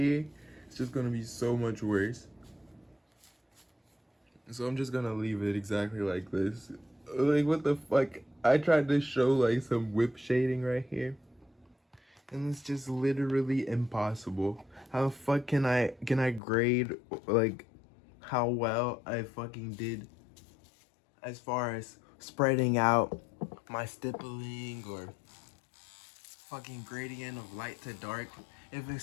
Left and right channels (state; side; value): drops out; right; at 16.4 s